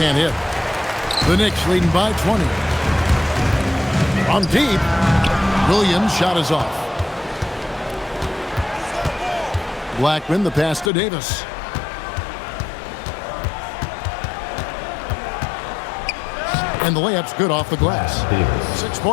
hit. The Knicks leading by 20. From deep, Williams' shot is off. Blackman, the pass to Davis. And the layup's good off the glass. 6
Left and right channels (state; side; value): drops out; right; at 10.9 s